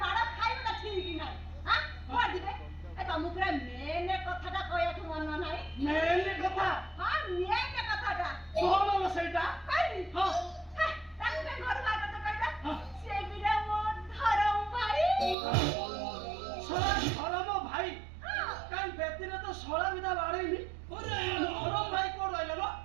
ମାଡ଼ ଖାଇବାଟା ଠିକ୍ ନାହିଁ। ଆଁ? କୁଆଡେ ଯିବେ? ଏ ତମକୁ ପୁରା ମେନ୍ କଥାଟା କହିବାକୁ ମନ ନାହିଁ। ମେନ୍ କଥା ହଁ, ମେନ୍ କଥାଟା। କଣ ଲୋ ସେଇଟା କହିବି? ହଁ ହେ, ତାକୁ କାଇଁ ଘରୁ ବାହାର କରିଛ କହିଲ? ହଁ। ସେ ବିଟା ମୋ ଧରମ ଭାଇ। ଶଳା ଧରମ ଭାଇ ହଁ। କାଇଁ ବେଦିରେ ତ ଶଳା ବିଧା ବାଡ଼େଇନି ଧରମ ଭାଇ କୋଉଠି ରହିଲ ଲୋ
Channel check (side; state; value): left; drops out; at 15.4 s